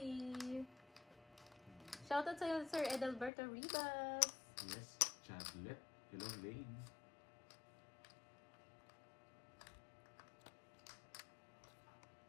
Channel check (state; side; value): drops out; right; at 3.3 s